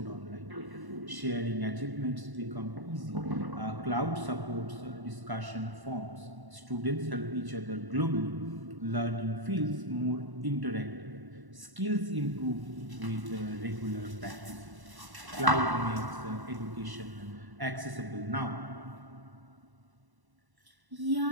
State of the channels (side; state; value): left; late; 1.0 ms